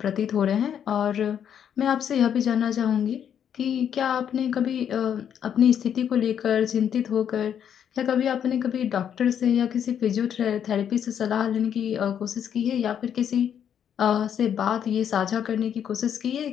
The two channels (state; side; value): quieter; right; 8.8 dB